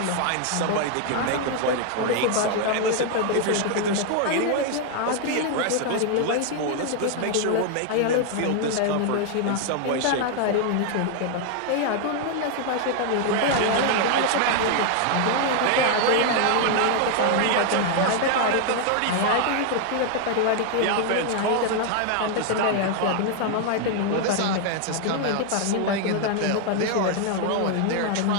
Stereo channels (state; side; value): different; both; correlation 0.00